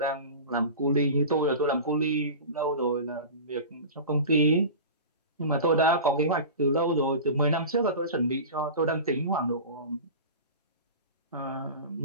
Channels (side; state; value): both; inverted; correlation -0.32